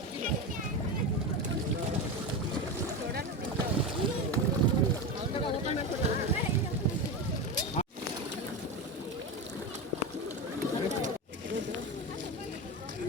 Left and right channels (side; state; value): both; normal; correlation 0.20